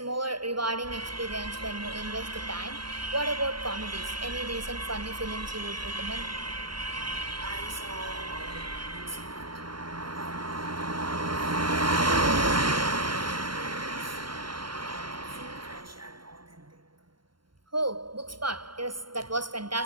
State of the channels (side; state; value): left; late; 0.72 ms